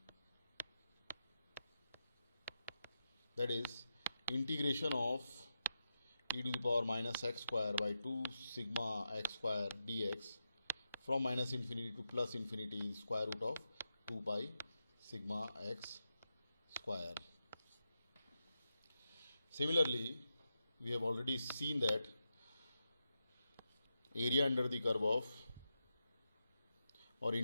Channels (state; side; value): inverted; both; correlation -0.88